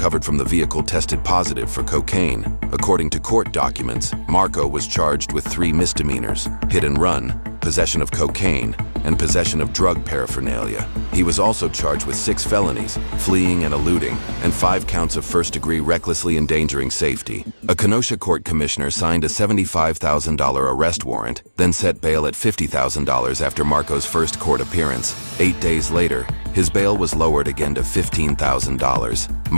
from the vehicle tested positive for cocaine. According to court documents, Marco was charged with 3 misdemeanors: hit and run, possession of cocaine, and possession of drug paraphernalia. He was also charged with 6 felonies, fleeing and eluding, and 5 counts of first-degree recklessly endangering safety. A Kenosha court commissioner signed a $75,000 arrest warrant, then set bail at $50,000 after Marco's first court appearance. 8 days later, his bail was lowered again to $15,000.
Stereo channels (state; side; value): inverted; both; correlation -1.00